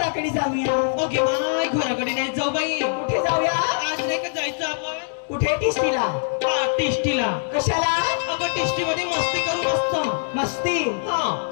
घराकडे जाऊया. ओके बाय घराकडे नाही जाऊ बाई. कुठे जाऊया? आज नाही का जायचं आपण कुठे? टिस्टीला. टिस्टीला. कशाला? अगं टिस्टी मध्ये मस्ती करू मस्त. मस्ती? हा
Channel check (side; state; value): right; silent; digital silence